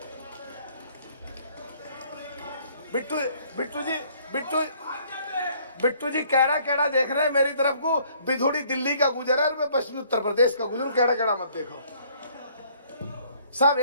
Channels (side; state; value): both; inverted; correlation -0.61